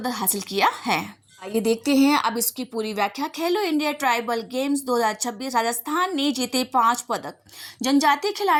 हासिल किया है। आइए देखते हैं अब इसकी पूरी व्याख्या। खेलो इंडिया ट्राइबल गेम्स 2026 राजस्थान ने जीते 5 पदक। जनजातीय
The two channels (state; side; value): identical; both; correlation 1.00